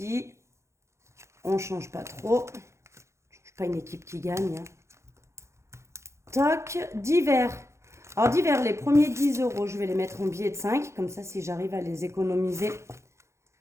On ne change pas trop. On ne change pas une équipe qui gagne. Hein. Toc. Divers. Alors, divers, les premiers 10 €, je vais les mettre en billets de 5. Comme ça, si j'arrive à les économiser.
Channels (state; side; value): late; left; 0.14 ms